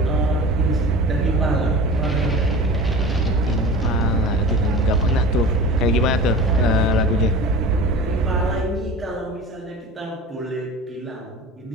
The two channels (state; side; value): normal; both; correlation 0.36